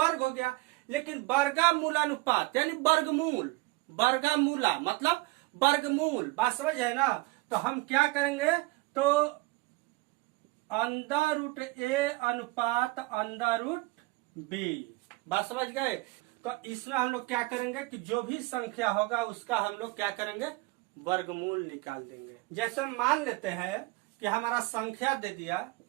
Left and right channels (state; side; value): quieter; left; 22.5 dB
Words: हो गया, लेकिन वर्गमूलानुपात यानी वर्गमूल, वर्गमूला मतलब वर्गमूल, बात समझ है ना। तो हम क्या करेंगे, तो अंडर रूट ए अनुपात अंडर रूट बी, बात समझ गए। तो इसमें हम लोग क्या करेंगे कि जो भी संख्या होगा उसका हम लोग क्या करेंगे, वर्गमूल निकाल देंगे। जैसे मान लेते हैं कि हमारा संख्या दे दिया